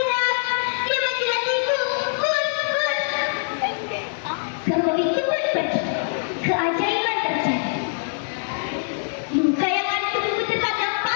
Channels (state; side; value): silent; right; digital silence